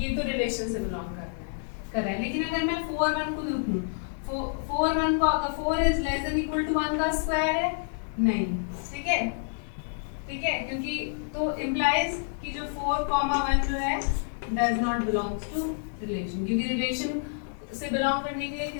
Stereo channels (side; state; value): right; silent; digital silence